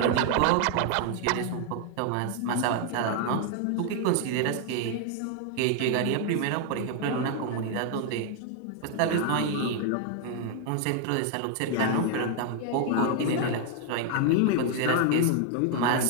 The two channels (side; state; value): both; different; correlation 0.00